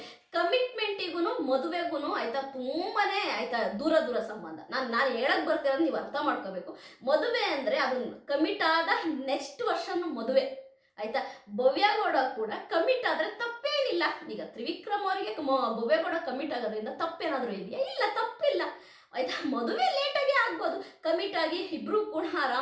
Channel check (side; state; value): both; identical; correlation 1.00